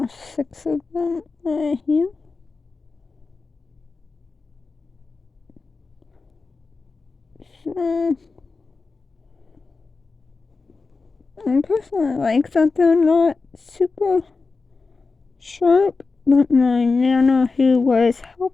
6 of them right here. So I personally like that they're not super sharp, but my nana who was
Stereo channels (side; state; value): right; quieter; 4.1 dB